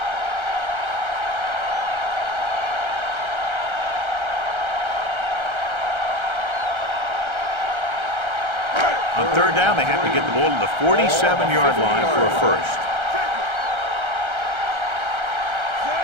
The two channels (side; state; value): left; late; 1.3 ms